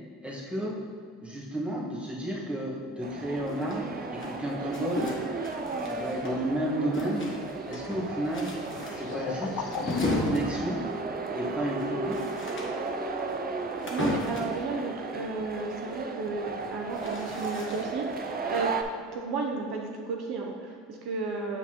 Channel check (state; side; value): normal; both; correlation 0.41